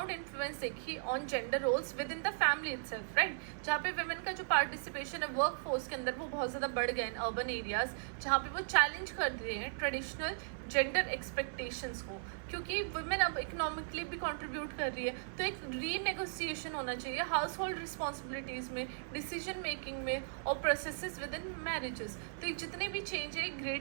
इन्फ्लुएंस देखी on gender roles within the family itself, right, जहाँ पे वुमेन का जो पार्टिसिपेशन है वर्क फोर्स के अंदर वो बहुत ज़्यादा बढ़ गया इन अर्बन एरियाज, जहाँ पे वो चैलेंज कर रहे हैं ट्रेडिशनल जेंडर एक्सपेक्टेशंस को, क्योंकि वुमेन अब इकोनॉमिकली भी कंट्रीब्यूट कर रही है, तो एक रीनेगोशिएशन होना चाहिए हाउस होल्ड रिस्पॉन्सिबिलिटीज़ में, डिसीजन मेकिंग में और प्रोसेसेस विद इन मैरिजेस। तो ये जितने भी चेंज है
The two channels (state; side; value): silent; left; 53 dB below the other